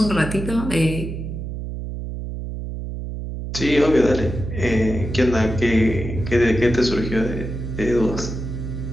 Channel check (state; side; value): noise; right; hum, 6 dB below the sound